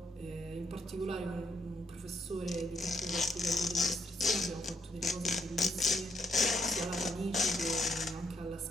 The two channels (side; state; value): both; normal; correlation 0.75